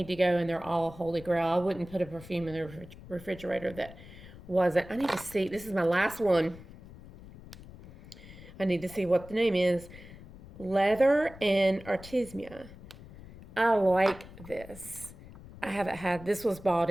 to go, and they're all holy grail. I wouldn't put a perfume in the refrigerator that wasn't. I need to see. This is my last one. I need to see what the name is. Leather and Artemisia. I like this. I haven't had, this was bought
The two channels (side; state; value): left; noise; rumble, 18 dB below the sound